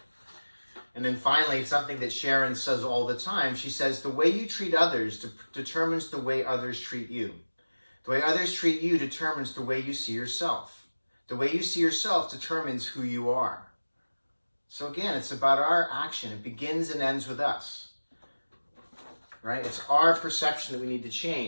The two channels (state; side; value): inverted; both; correlation -1.00